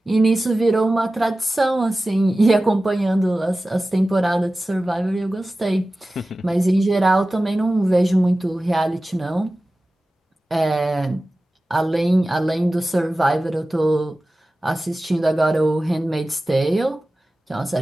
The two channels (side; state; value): both; normal; correlation 0.96